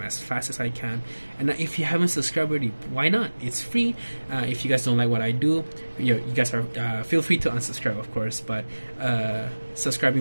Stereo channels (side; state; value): both; inverted; correlation -1.00